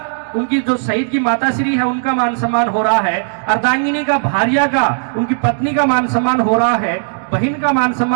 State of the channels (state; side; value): silent; left; digital silence